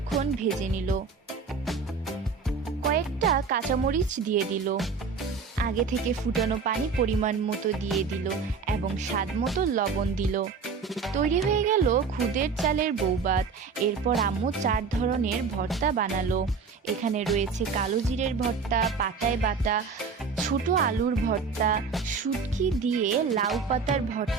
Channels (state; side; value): quieter; left; 5.1 dB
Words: ভেজে নিল। কয়েকটা কাঁচামরিচ দিয়ে দিল। আগে থেকে ফুটানো পানি পরিমাণ মতো দিয়ে দিল এবং স্বাদ মতো লবণ দিল। তৈরি হয়ে গেল খুদের চালের বউভাত। এরপর আম্মু 4 ধরনের ভর্তা বানালো। এখানে রয়েছে কালো জিরের ভর্তা, পাতায় বাটা ছোট আলুর ভর্তা, শুটকি দিয়ে লাউ পাতার